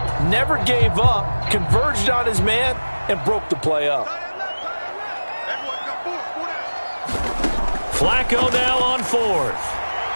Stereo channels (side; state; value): both; inverted; correlation -1.00